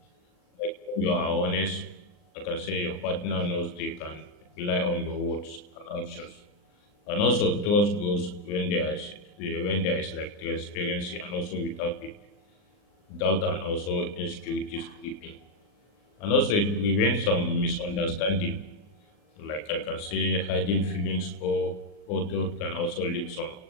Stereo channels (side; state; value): right; late; 39 ms